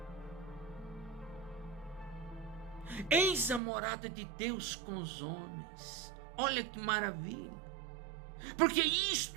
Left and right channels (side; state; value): left; drops out; at 3.6 s